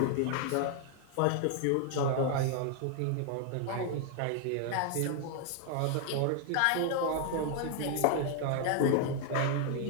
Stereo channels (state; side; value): different; both; correlation 0.00